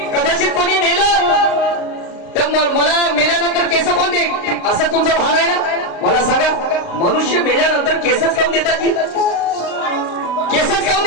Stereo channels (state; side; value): late; right; 35 ms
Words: कदाचित कोणी नेलं तर मला मेल्यानंतर केस कोण दे असं तुमचा भान आहे ना. मला सांगा मनुष्य मेल्यानंतर केसच काऊन देतात की? केसच काऊन